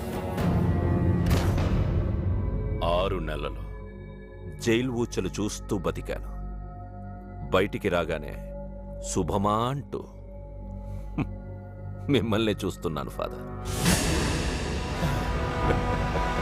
6 నెలలు జైలు ఊచలు చూస్తూ బతికాను. బయటికి రాగానే శుభమా అంటూ మిమ్మల్ని చూస్తున్నాను ఫాదర్.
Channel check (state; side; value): identical; both; correlation 1.00